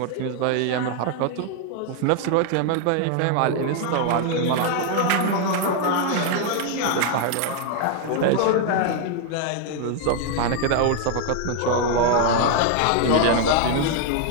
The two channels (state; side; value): different; both; correlation 0.00